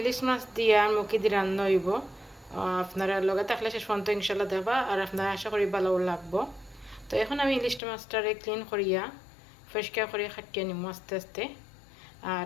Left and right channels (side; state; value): right; drops out; at 7.8 s